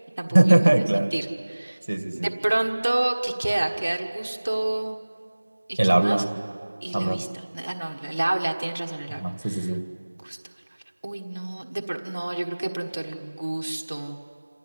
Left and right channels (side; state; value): both; inverted; correlation -1.00